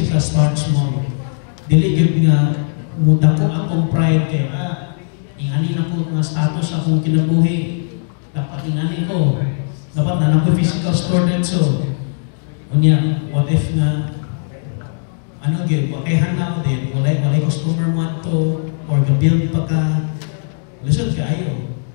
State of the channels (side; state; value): right; silent; digital silence